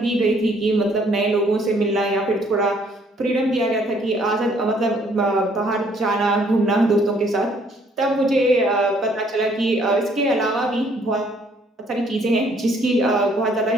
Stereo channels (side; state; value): both; normal; correlation 0.64